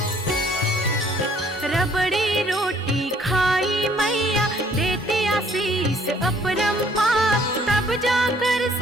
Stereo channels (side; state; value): both; normal; correlation 0.61